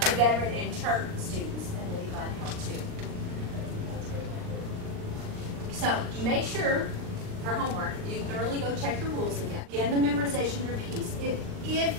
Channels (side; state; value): left; late; 39 ms